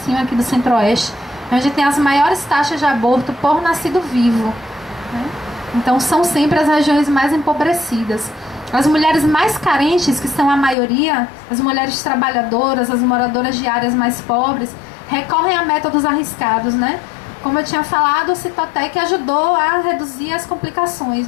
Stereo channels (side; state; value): right; drops out; at 10.8 s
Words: aqui do Centro-Oeste, onde tem as maiores taxas de aborto por nascido vivo, né? Então são sempre as regiões mais empobrecidas. As mulheres mais carentes, que são a maioria, as mulheres trabalhadoras, as moradoras de áreas mais pobres, recorrem a métodos arriscados, né? Como eu tinha falado, o Citotec ajudou a reduzir as complicações,